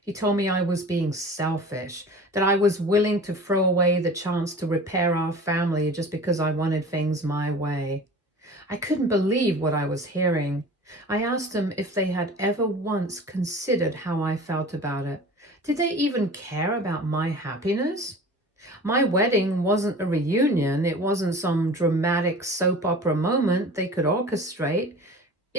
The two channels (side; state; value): both; normal; correlation 0.40